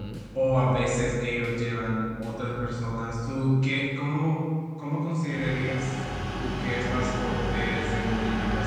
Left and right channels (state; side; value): identical; both; correlation 1.00